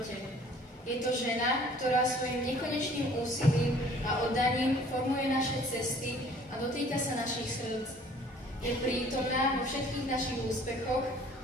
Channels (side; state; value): both; normal; correlation 0.54